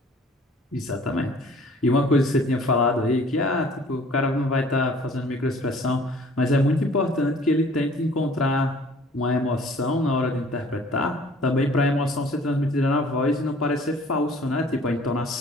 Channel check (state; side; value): normal; both; correlation 0.52